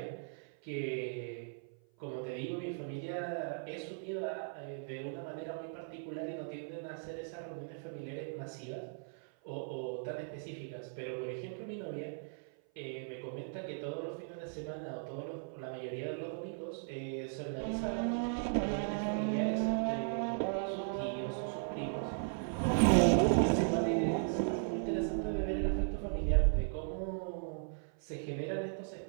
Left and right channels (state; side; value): silent; left; 53 dB below the other